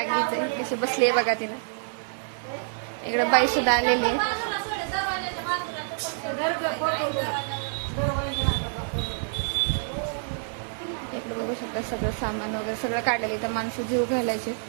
आहे. कशी बसली आहे बघा तिने. इकडे बाई सुद्धा आलेली आहे. इकडे बघू शकता सगळं सामान वगैरे सगळं काढलेलं. इथं माणसं जीव घालायचे.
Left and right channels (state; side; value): silent; left; digital silence